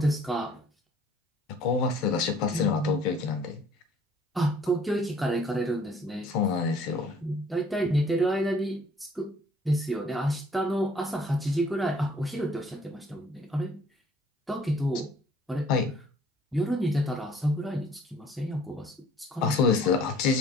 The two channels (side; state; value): both; normal; correlation 0.57